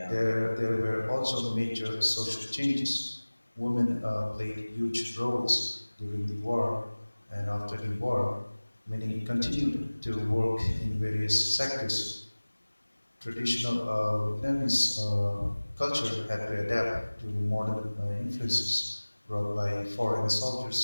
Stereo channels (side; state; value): both; inverted; correlation -1.00